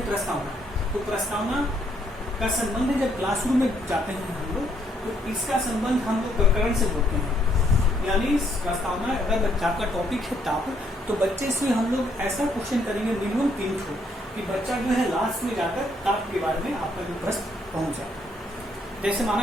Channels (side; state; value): both; normal; correlation 0.71